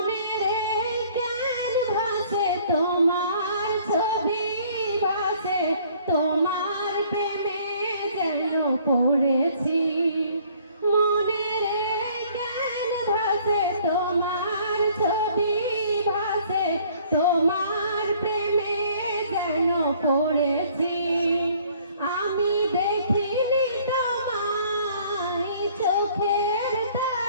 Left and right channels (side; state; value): both; inverted; correlation -0.58